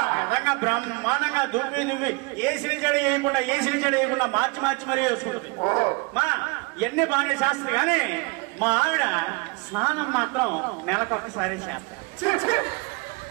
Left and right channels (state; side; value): quieter; left; 29.2 dB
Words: నిజంగా బ్రహ్మాండంగా దువ్వి ఏసీని చెడ వేయకుండా మార్చి మరీ వేసుకుంటుంది. మా ఎన్ని బాగానే శాస్త్రం కానీ మా ఆవిడ స్నానం మాత్రం నెలకొకసారి చేస్తారు.